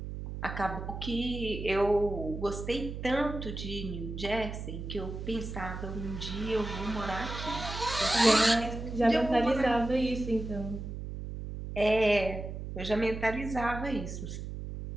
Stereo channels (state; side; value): noise; right; hum, 7 dB below the sound